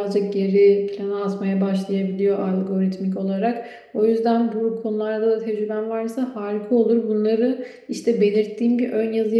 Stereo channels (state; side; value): identical; both; correlation 1.00